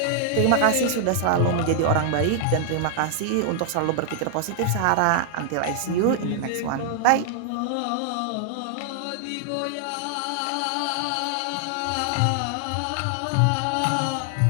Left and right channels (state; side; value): different; both; correlation 0.00